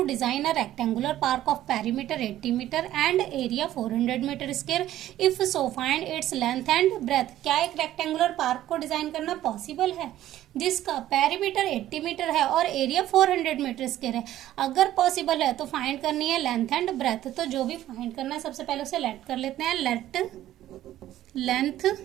design a rectangular park of perimeter 80 metre and area 400 metre square, if so find its length and breadth. क्या एक rectangular park को design करना possible है जिसका पेरीमीटर 80 मीटर है और एरिया 400 मीटर स्क्वायर है? अगर पॉसिबल है तो फाइंड करनी है लेंथ एंड ब्रेथ। तो जो भी फाइंड करना है सबसे पहले उसे लेट कर लेते हैं। लेट लेंथ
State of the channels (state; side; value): quieter; left; 13.3 dB